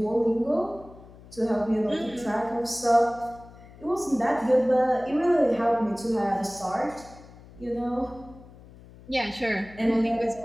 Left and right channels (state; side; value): noise; left; hum, 21 dB below the sound